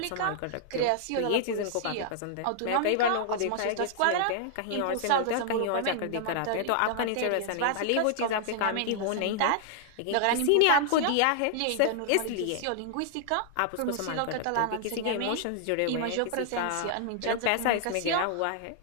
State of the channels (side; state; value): both; different; correlation -0.01